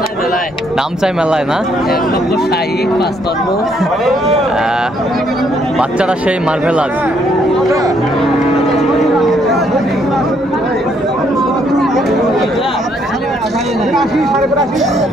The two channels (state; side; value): normal; both; correlation 0.70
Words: দাম চাই মেলায় না, বাচ্চারা সেই মার্ভেলাস।